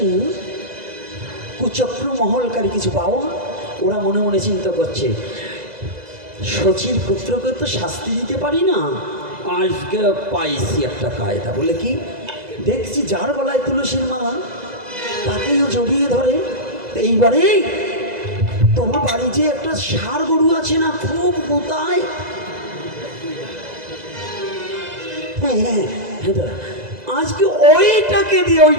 কুচক্র মহলকারী কিছু পাওয়া, ওরা মনে মনে চিন্তা করছে শচীর পুত্রকে তো শাস্তি দিতে পারি না, আজকে পাইছি একটা কায়দা। বলে কি? দেখছি যার গলায় তুলসীর মালা তাকেও জড়িয়ে ধরে। এইবারে তোমার বাড়ি যে একটা ষাঁড় গরু আছে না, খুব গোতায়, হ্যাঁ আজকে ওইটাকে দিয়ে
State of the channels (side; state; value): left; late; 2.0 ms